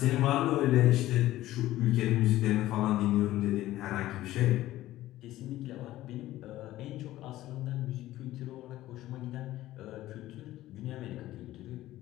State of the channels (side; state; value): right; quieter; 15.3 dB